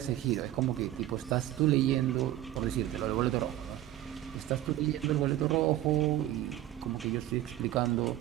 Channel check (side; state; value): left; quieter; 13.8 dB